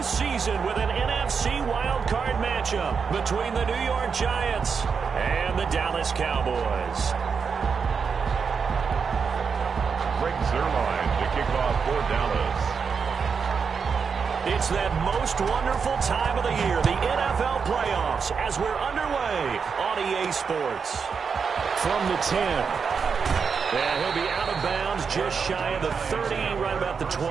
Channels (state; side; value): quieter; left; 5.9 dB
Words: with an NFC wildcard matchup between the New York Giants and the Dallas Cowboys. Greg Zuerlein to kick off for Dallas. It's that most wonderful time of the year, the NFL playoffs, as we're underway on EA Sports. From the 10. Yeah, he'll be out of bounds just shy of the 30, right about the